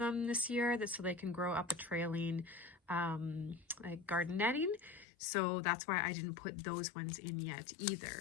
this year, so they can grow up a trailing like garden netting. So that's why I didn't put those ones in yet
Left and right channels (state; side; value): drops out; right; at 5.1 s